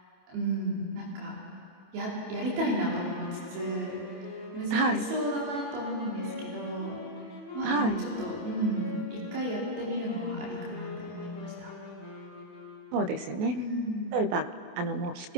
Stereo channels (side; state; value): left; late; 28 ms